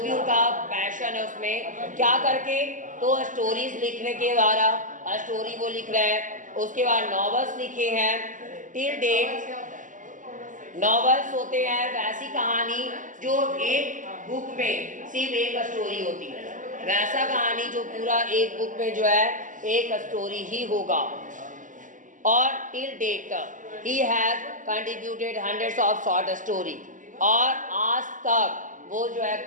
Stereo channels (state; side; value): late; left; 0.37 ms